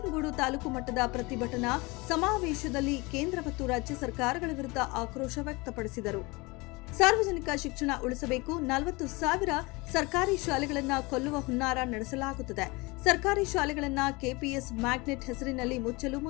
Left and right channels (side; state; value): right; quieter; 25.1 dB